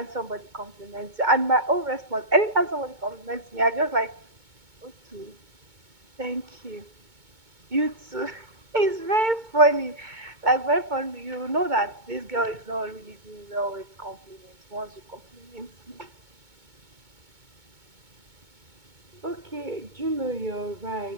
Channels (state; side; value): late; left; 2.2 ms